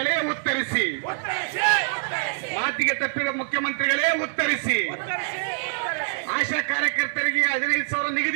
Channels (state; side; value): silent; left; digital silence